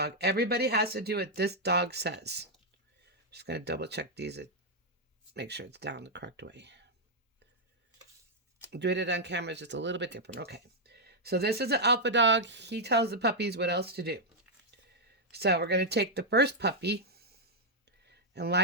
Everybody has to do what this dog says. Just going to double check these. Make sure it's down the correct way. Doing it on camera is just a little bit different. Okay, so this is an alpha dog. He tells the puppies what else to do. So we're going to take the first puppy and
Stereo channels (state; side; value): normal; both; correlation -0.03